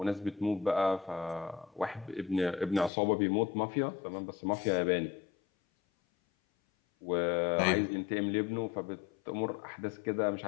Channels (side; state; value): right; drops out; at 2.9 s